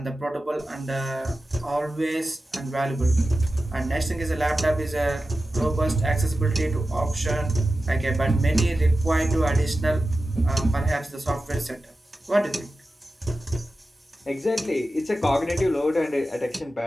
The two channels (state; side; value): normal; both; correlation 0.93